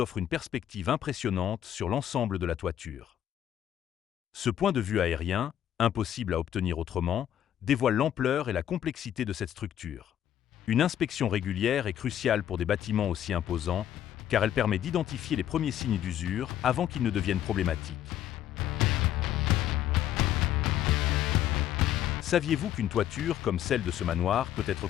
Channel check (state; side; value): quieter; right; 11.1 dB